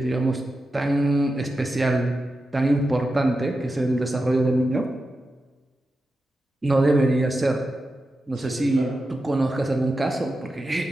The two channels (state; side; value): normal; both; correlation 0.90